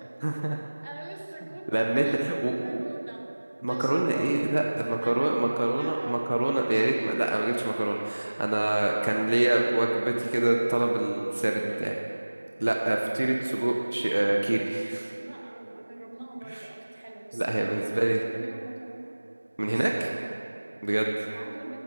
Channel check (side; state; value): both; inverted; correlation -1.00